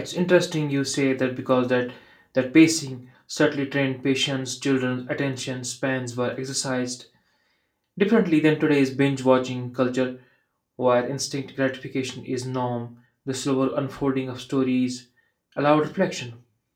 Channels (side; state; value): both; identical; correlation 1.00